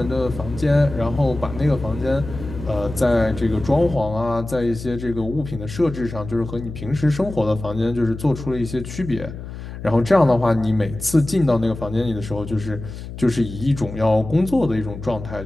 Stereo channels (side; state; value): left; noise; hum, 11 dB below the sound